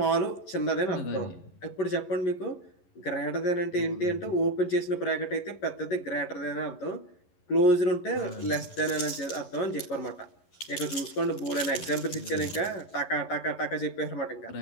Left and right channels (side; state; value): right; late; 11 ms